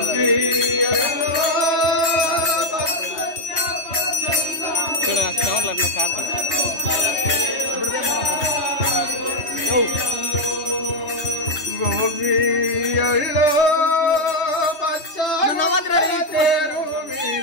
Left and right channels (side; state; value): right; late; 3.2 ms